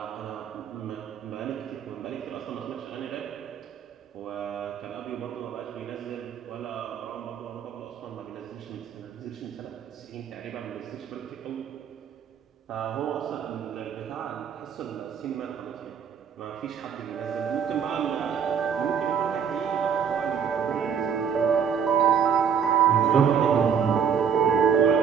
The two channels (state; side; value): quieter; left; 7.5 dB